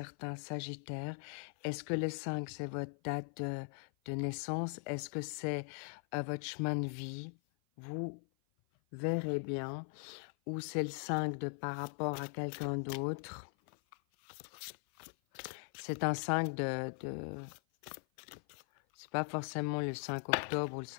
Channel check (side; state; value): right; silent; 51 dB below the other